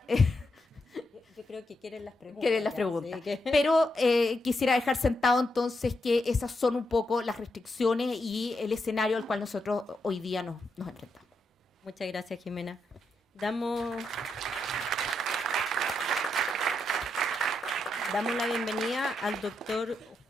Yo creo que quieren las preguntas. Quieren las preguntas. Sí, pero quisiera dejar sentado entonces que esas son un poco las restricciones y el escenario al cual nosotros hoy día nos enfrentamos. Muchas gracias, Jimena. Damos la bienvenida al doctor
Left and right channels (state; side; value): normal; both; correlation 0.82